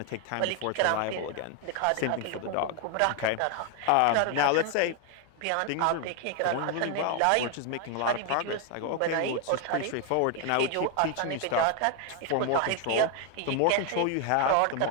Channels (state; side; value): different; both; correlation 0.01